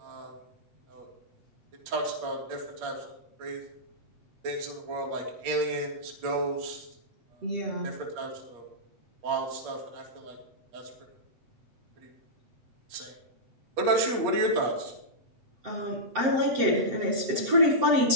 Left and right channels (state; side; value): late; left; 7.8 ms